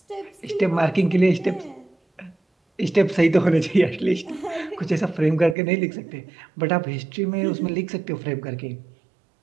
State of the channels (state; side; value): drops out; left; at 5.6 s